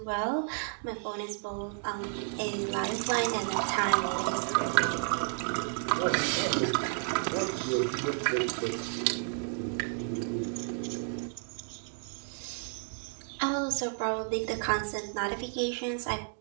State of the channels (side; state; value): left; silent; 57 dB below the other